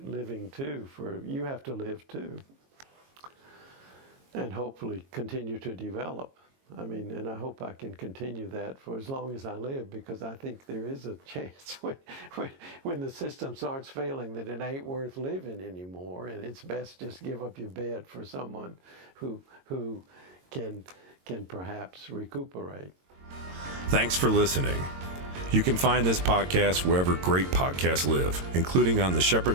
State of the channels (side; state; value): left; late; 22 ms